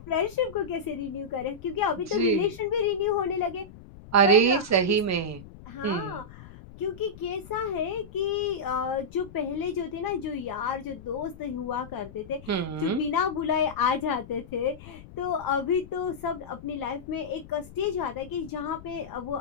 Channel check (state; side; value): noise; left; rumble, 17 dB below the sound